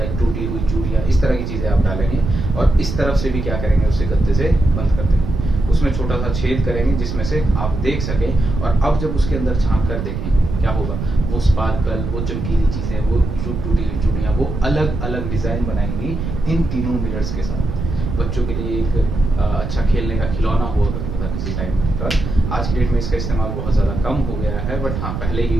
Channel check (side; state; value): right; noise; rumble, 4 dB below the sound